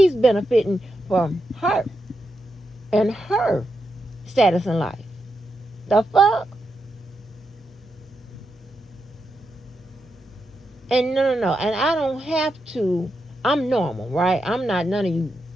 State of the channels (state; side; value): normal; both; correlation 0.85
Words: benefiting from her and her status in life. The fuck? And no. And I don't have to. I'm normal, right? I'm not none of you